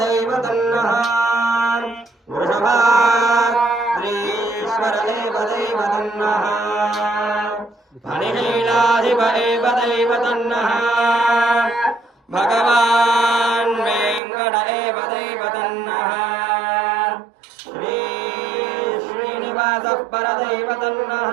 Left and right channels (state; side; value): drops out; left; at 14.2 s